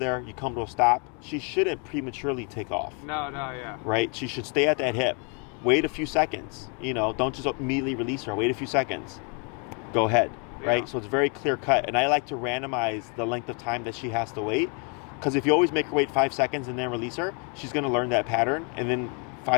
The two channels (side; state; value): right; quieter; 36.9 dB